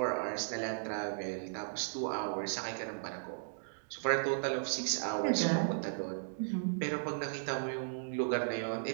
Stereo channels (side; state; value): left; silent; digital silence